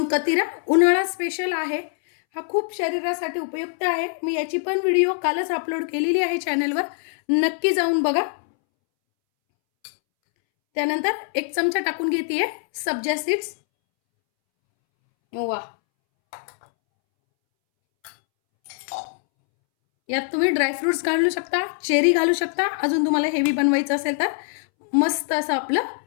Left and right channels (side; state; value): right; silent; 63 dB below the other